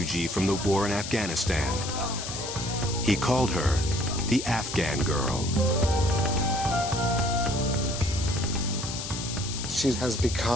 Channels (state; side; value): noise; left; hiss, 7 dB below the sound